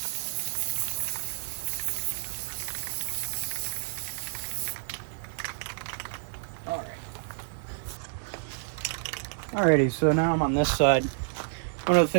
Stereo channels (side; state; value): left; silent; digital silence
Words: Alrighty, so now I'm on this side. One of the